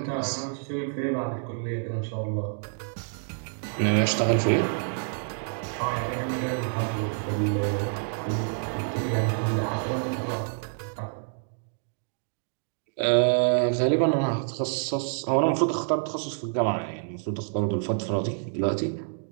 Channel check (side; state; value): left; silent; 60 dB below the other